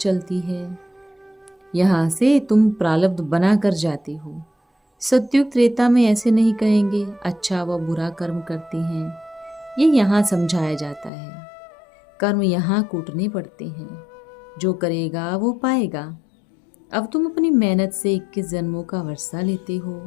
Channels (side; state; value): right; drops out; at 11.1 s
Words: है। यहाँ से तुम प्रारब्ध बना कर जाते हो। सतयुग त्रेता में ऐसे नहीं कहेंगे अच्छा व बुरा कर्म करते हैं। ये यहाँ समझाया जाता है। कर्म यहाँ कूटने पड़ते हैं, जो करेगा वो पाएगा। अब तुम अपनी मेहनत से 21 जन्मों का वर्षा लेते हो।